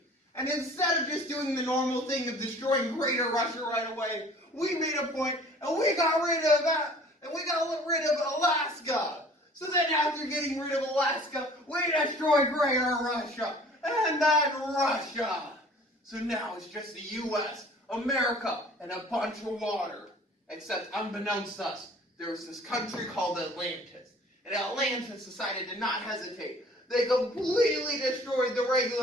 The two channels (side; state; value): both; normal; correlation 0.50